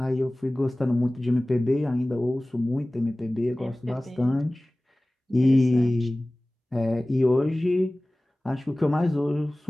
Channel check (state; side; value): normal; both; correlation 0.98